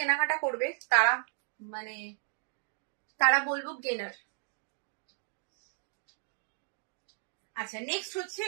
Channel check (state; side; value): silent; left; 55 dB below the other